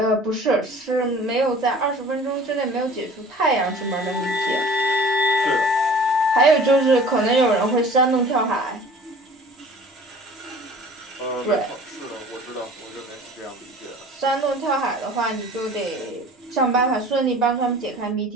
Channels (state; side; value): normal; both; correlation 0.45